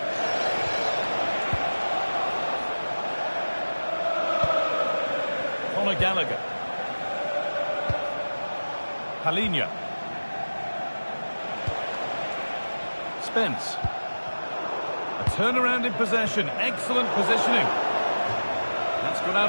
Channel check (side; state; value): both; inverted; correlation -1.00